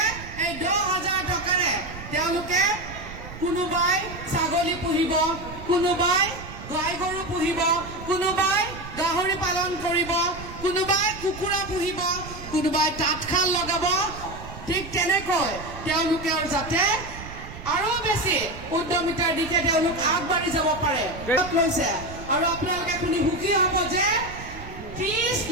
এই 10,000 টকাৰে তেওঁলোকে কোনোবাই ছাগলী পুহিব, কোনোবাই গাই গৰু পুহিব, কোনোবাই গাহৰি পালন কৰিব, কোনোবাই কুকুৰা পুহিব, কোনোবাই তাঁতশাল লগাব। ঠিক তেনেকৈ তেওঁলোকে যাতে আৰু বেছি উদ্যমিতাৰ দিশে তেওঁলোক আগবাঢ়ি যাব পাৰে লৈছে। আৰু আপোনালোকে শুনি সুখী হ'ব যে 30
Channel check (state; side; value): noise; right; rumble, 13 dB below the sound